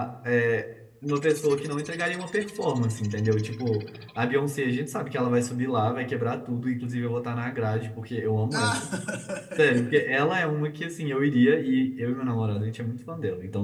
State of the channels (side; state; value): both; identical; correlation 1.00